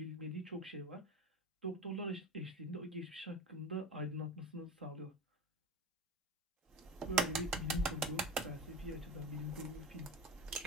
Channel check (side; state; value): both; normal; correlation 0.30